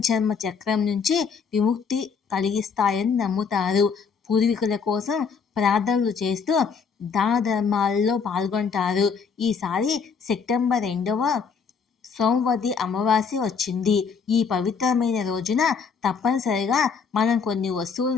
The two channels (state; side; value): quieter; right; 5.9 dB